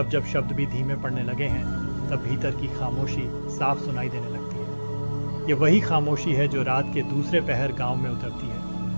जब शब्द भी धीमे पड़ने लगे हैं तब भीतर की खामोशी साफ सुनाई देने लगती है। ये वही खामोशी है जो रात के दूसरे पहर गांव में उतरती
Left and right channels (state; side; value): inverted; both; correlation -1.00